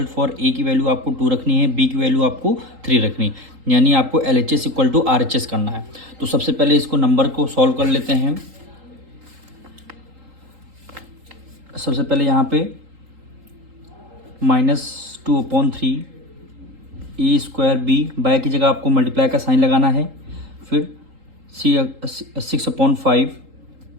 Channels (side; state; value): left; late; 3.8 ms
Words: for a की वैल्यू आपको 2 रखनी है, बी की वैल्यू आपको 3 रखनी, यानी आपको LHS इक्वल टू RHS करना है। तो सबसे पहले इसको नंबर को सॉल्व कर लेते हैं। सबसे पहले यहाँ पे -2/3 ए स्क्वायर बी बाय की जगह आपको मल्टीप्लाई का साइन लगाना है, फिर 6/5